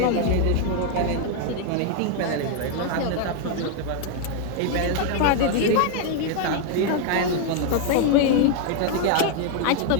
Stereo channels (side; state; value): both; different; correlation 0.00